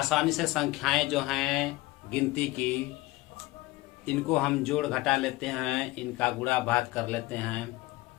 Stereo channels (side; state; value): right; quieter; 20.1 dB